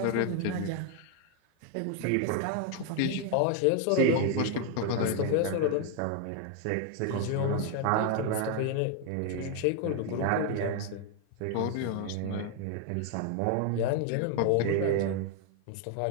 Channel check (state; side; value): different; both; correlation 0.01